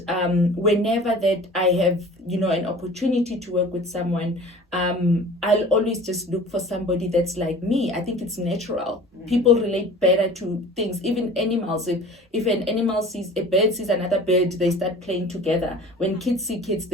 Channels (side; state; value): both; normal; correlation 0.43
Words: whenever that I have, an opportunity to work with someone, I'll always just look for somebody that's like me. I think it's natural. People relate better to things, even animals. If an animal a bird sees another bird, they start playing together. When kids see kids,